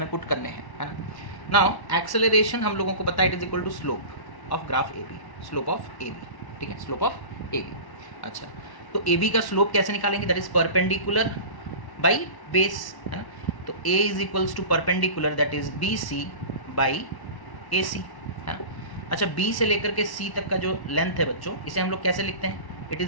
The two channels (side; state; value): right; late; 1.1 ms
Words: पुट करने हैं, है ना। नाउ एक्सेलरेशन हम लोगों को पता है it is equal to slope of graph A B, slope of A B, ठीक है, स्लोप ऑफ ए बी। अच्छा, तो ए बी का स्लोप कैसे निकालेंगे, that is perpendicular by base, है ना, तो a is equals to perpendicular that is B C by A C, है ना। अच्छा, बी से लेकर के सी तक का जो लेंथ है बच्चों, इसे हम लोग कैसे लिखते हैं, it